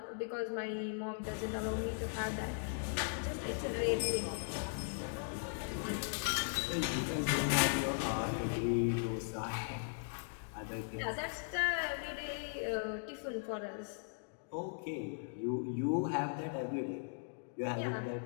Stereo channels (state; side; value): silent; right; digital silence